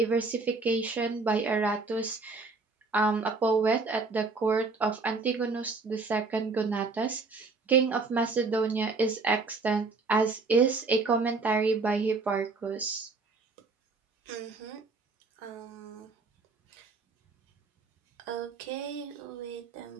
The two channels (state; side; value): quieter; left; 4.0 dB